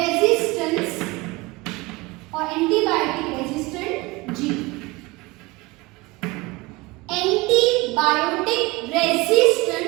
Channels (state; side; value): quieter; left; 22.9 dB